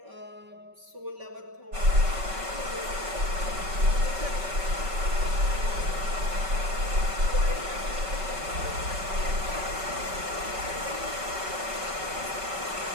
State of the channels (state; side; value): late; left; 5.3 ms